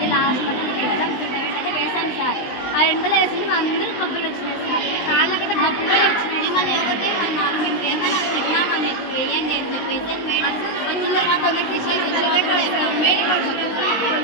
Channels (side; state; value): right; late; 19 ms